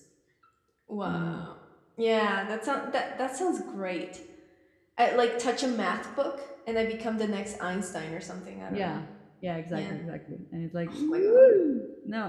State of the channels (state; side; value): identical; both; correlation 1.00